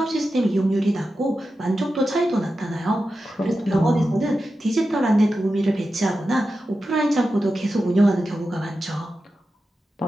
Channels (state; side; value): normal; both; correlation 0.91